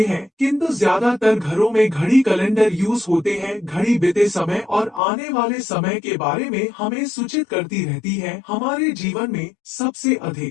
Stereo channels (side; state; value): right; drops out; at 5.0 s